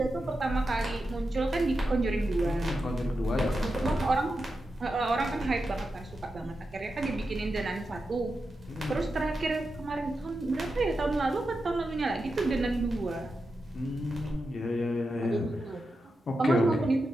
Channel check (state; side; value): normal; both; correlation 0.89